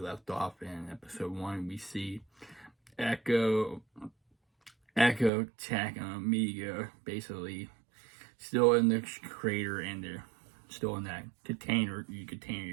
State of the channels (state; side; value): drops out; left; at 5.3 s